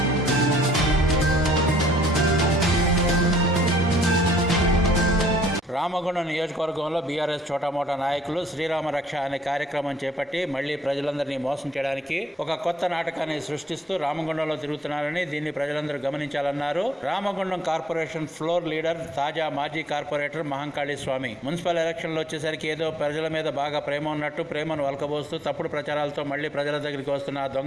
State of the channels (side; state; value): both; normal; correlation 0.64